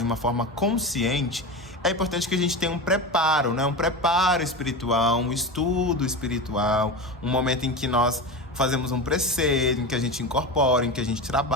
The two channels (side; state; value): both; normal; correlation 0.24